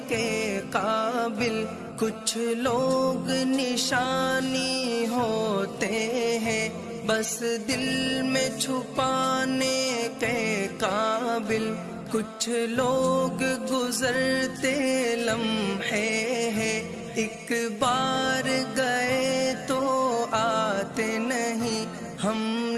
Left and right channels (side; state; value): both; identical; correlation 1.00